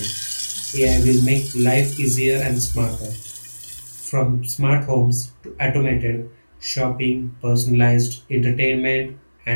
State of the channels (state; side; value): inverted; both; correlation -1.00